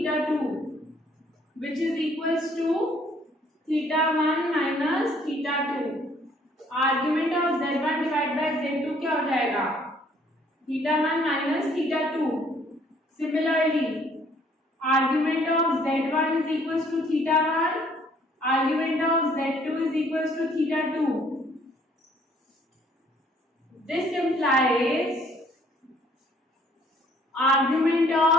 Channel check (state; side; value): normal; both; correlation 0.62